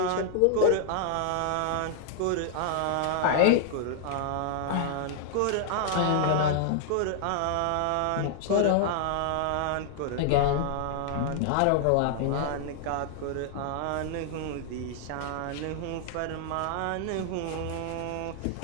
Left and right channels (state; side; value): different; both; correlation -0.01